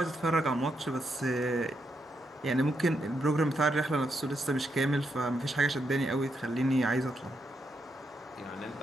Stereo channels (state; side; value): normal; both; correlation 0.81